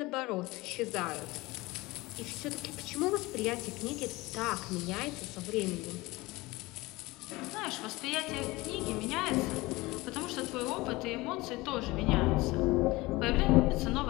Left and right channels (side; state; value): right; quieter; 21.3 dB